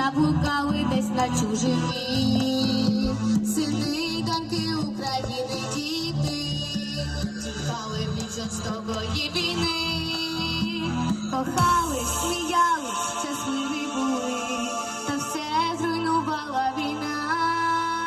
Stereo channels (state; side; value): identical; both; correlation 1.00